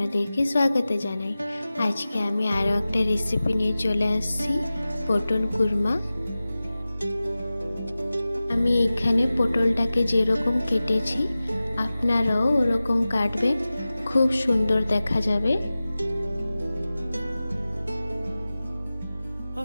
স্বাগত জানাই। আজকে আমি আরও একটা রেসিপি নিয়ে চলে আসছি, পটল কুরমা। আমি এখানে পটলটাকে যেরকম কেটেছি আপনারাও ওরকম কাটবেন, খুব সুন্দর দেখা যাবে।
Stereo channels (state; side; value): inverted; both; correlation -0.96